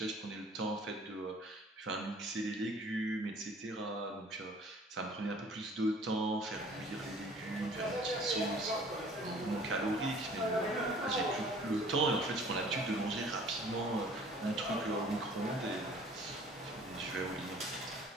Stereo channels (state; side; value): normal; both; correlation 0.51